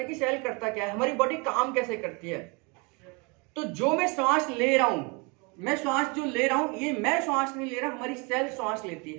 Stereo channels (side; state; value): left; quieter; 30.3 dB